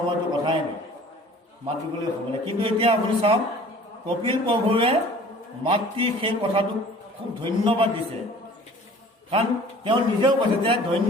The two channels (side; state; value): both; normal; correlation 0.48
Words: কথাই নাই, মাত দিবলৈ সময় নাই। কিন্তু এতিয়া আপুনি চাওক, কপিল প্ৰভুৱে মাতৃ সেই কথাটোক খুব ধন্যবাদ দিছে। কাৰণ তেওঁ নিজেও কৈছে যে